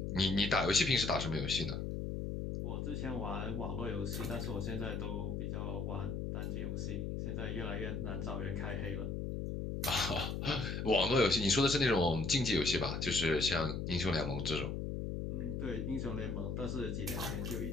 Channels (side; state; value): left; noise; hum, 3 dB below the sound